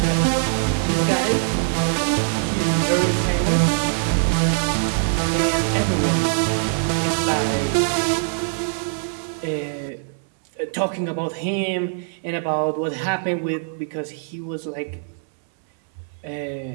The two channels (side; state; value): left; silent; 61 dB below the other